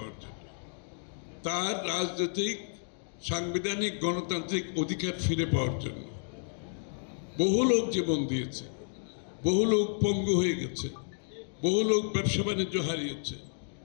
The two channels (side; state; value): right; silent; digital silence